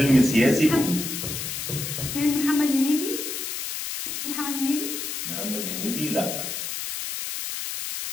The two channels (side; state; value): left; noise; hiss, 5 dB below the sound